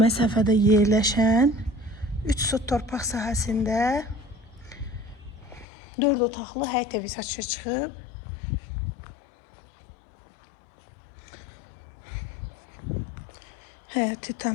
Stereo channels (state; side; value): drops out; right; at 5.7 s